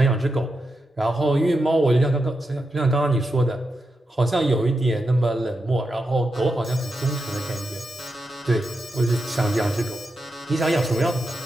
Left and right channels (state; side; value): normal; both; correlation 0.87